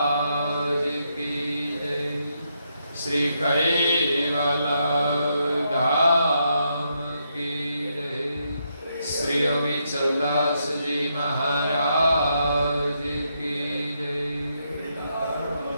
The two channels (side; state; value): both; inverted; correlation -0.79